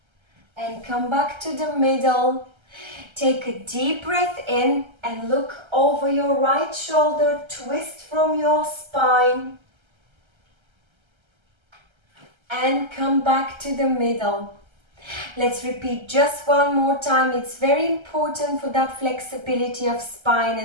and come back to the middle. Take a deep breath in and look over your right shoulder, twist from your spine and come back to the middle. Let's repeat just one more time. It's very important for that flexibility of spine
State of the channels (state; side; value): late; left; 1.3 ms